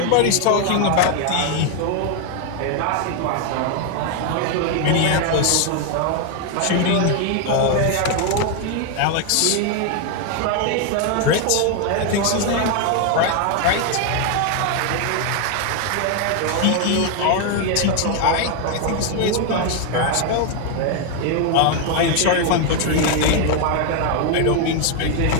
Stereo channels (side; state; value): both; different; correlation 0.01